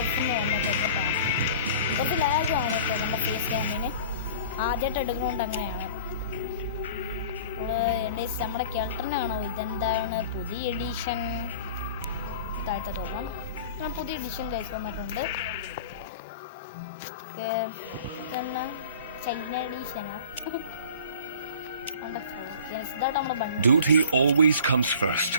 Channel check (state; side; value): inverted; both; correlation -0.44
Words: വന്നപ്പോൾ കുറച്ച് ലാഗാണ് കേട്ടോ നമ്മുടെ ഫേസ് ക്യാമിന്. ആദ്യമായിട്ട് എടുക്കുന്നതുകൊണ്ട് അങ്ങനെയാണ്. നമ്മുടെ കെൽട്ടറിനാണോ ഇതെന്താണ് പുതിയ എഡിഷൻ? താഴത്തെ തോന്നാം, പുതിയ എഡിഷൻ കൈസ് വന്നിട്ടുണ്ട്. പിന്നെ China എഡിഷനാ. Duty always comes first.